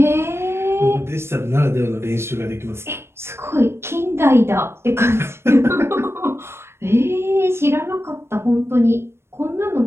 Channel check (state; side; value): late; left; 0.12 ms